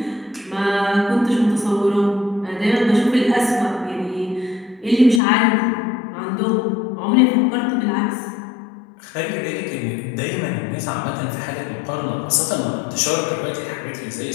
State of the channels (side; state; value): right; drops out; at 5.2 s